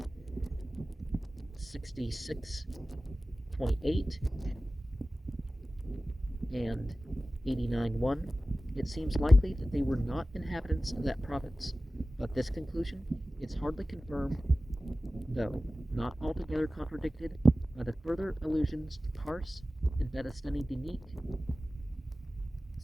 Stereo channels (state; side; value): normal; both; correlation 0.96